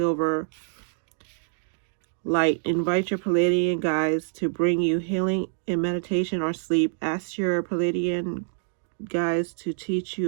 Light. Invite your Pleiadian guides to bring you healing in meditation or sleep. Ask your Pleiadian guides to teach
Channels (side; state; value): left; silent; digital silence